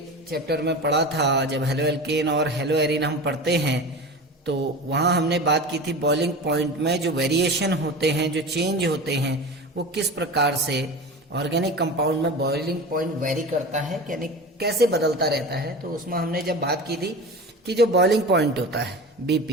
चैप्टर में पढ़ा था, जब हेलो एल्केन और हेलो एरिन हम पढ़ते हैं, तो वहां हमने बात की थी बॉइलिंग पॉइंट में जो वेरिएशन होते हैं, जो चेंज होते हैं, वो किस प्रकार से ऑर्गेनिक कंपाउंड में बॉइलिंग पॉइंट वेरी करता है, यानी कैसे बदलता रहता है। तो उसमें हमने जब बात की थी कि जो बॉइलिंग पॉइंट होता है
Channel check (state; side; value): normal; both; correlation 0.31